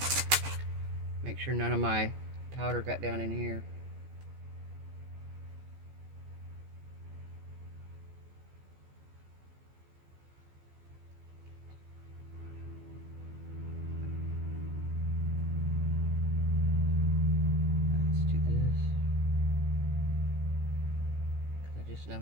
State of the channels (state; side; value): late; left; 14 ms